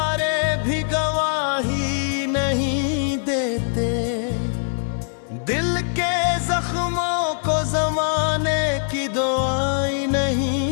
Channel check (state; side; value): silent; right; digital silence